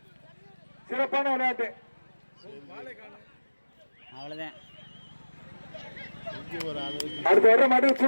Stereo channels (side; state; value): both; inverted; correlation -1.00